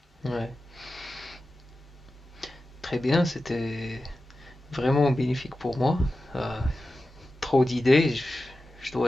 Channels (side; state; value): both; normal; correlation 0.93